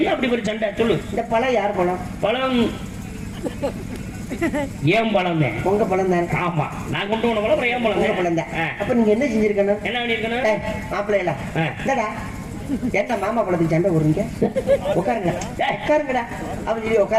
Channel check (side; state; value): both; identical; correlation 1.00